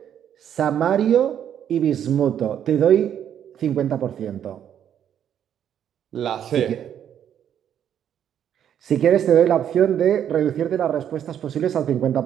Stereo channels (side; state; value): left; quieter; 9.5 dB